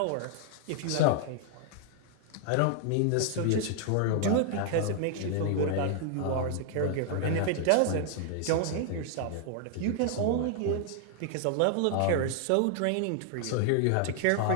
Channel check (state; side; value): different; both; correlation 0.00